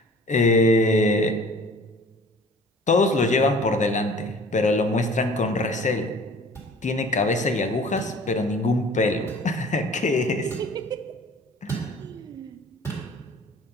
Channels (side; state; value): both; normal; correlation 0.48